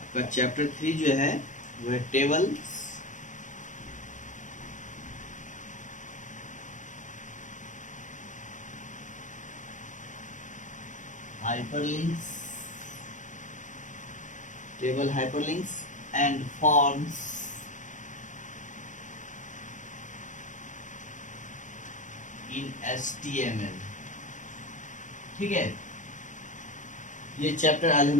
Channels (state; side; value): late; right; 0.37 ms